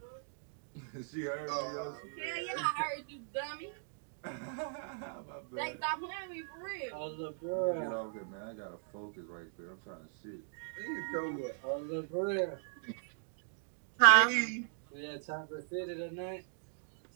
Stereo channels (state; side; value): silent; left; digital silence